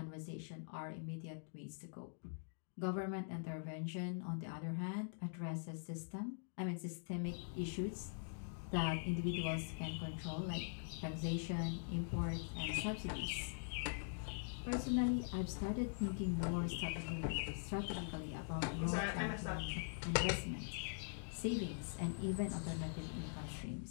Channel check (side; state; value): right; silent; digital silence